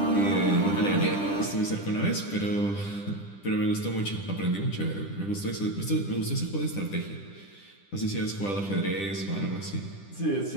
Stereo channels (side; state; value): right; late; 10 ms